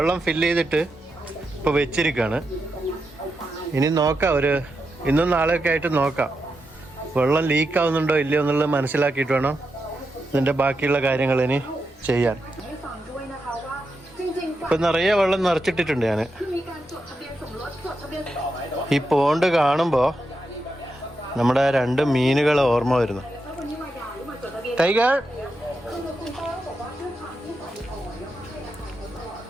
ഫില്ല് ചെയ്തിട്ട് ഇപ്പോൾ വെച്ചിരിക്കുകയാണ്. ഇനി നോക്കാം, ഇന്നും നാളെയൊക്കെ ആയിട്ട് നോക്കാം വെള്ളം ലീക്ക് ആവുന്നുണ്ടോ ഇല്ലയോ എന്നുള്ളത് മനസ്സിലാക്കിയിട്ട് വേണം ഇതിൻ്റെ ബാക്കിയുള്ള കാര്യങ്ങൾ ഇനി ചെയ്യാൻ. ഇപ്പം നിറയെ വെള്ളം നിറച്ചിട്ടിട്ടുണ്ട് ഞാൻ. ഈ പോണ്ട് കാണുമ്പോൾ നമ്മുടെ 2 മീനുകൾ ഓർമ്മ വരുന്നു. ടൈഗർ,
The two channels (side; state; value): both; normal; correlation 0.86